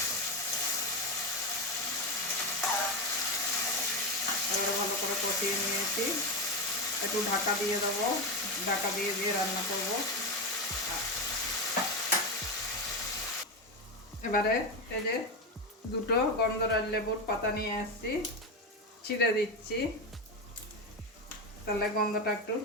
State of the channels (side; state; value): both; normal; correlation 0.13